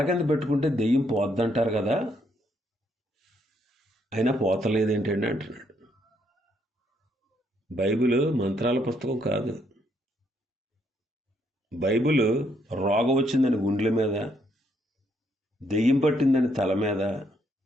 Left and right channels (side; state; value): both; normal; correlation 0.72